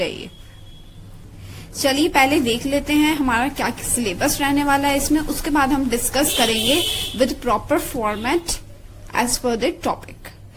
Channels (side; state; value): both; identical; correlation 1.00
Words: है ये। चलिए पहले देख लेते हैं हमारा क्या सिलेबस रहने वाला है इसमें, उसके बाद हम डिस्कस करेंगे with proper format as per the topic.